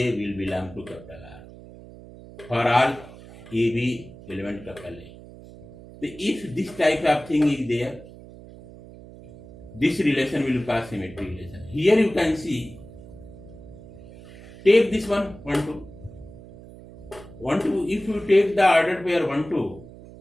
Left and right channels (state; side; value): noise; right; hum, 18 dB below the sound